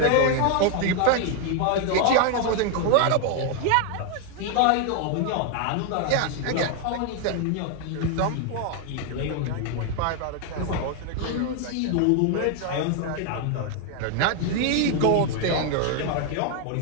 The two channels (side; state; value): both; different; correlation 0.01